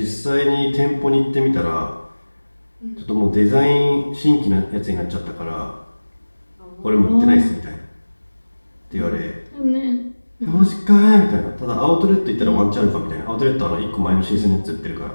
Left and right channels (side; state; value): both; inverted; correlation -1.00